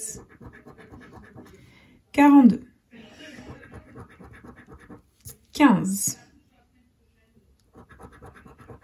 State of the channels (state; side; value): identical; both; correlation 1.00